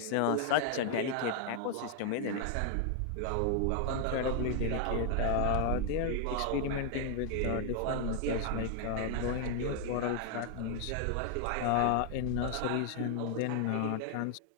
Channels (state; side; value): different; both; correlation 0.00